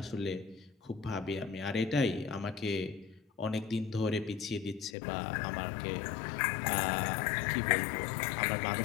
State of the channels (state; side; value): drops out; right; at 5.0 s